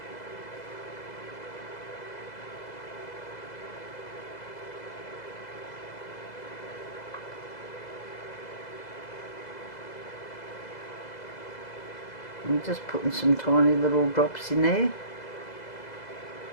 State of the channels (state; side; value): late; right; 2.0 ms